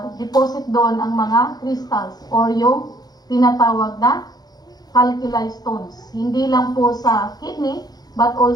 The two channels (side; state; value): right; late; 0.19 ms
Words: deposit doon ang mga crystals or yung tinatawag na calculi stones. Hindi lang po sa kidney, but